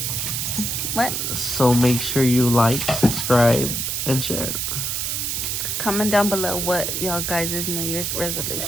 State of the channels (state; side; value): noise; right; hiss, 1 dB below the sound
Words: What? So make sure you like, subscribe, and share. Comment down below what y'all guys' New Year's